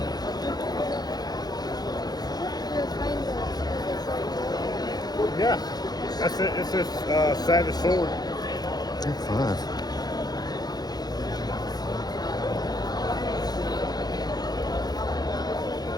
Yeah, that's it. It's this Savage Sword. 5.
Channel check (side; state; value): right; late; 0.19 ms